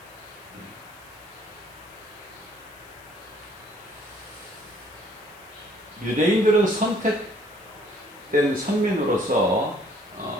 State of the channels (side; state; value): left; noise; hiss, 24 dB below the sound